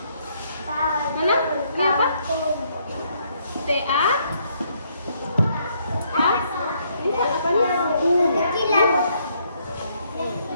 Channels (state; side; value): inverted; both; correlation -0.71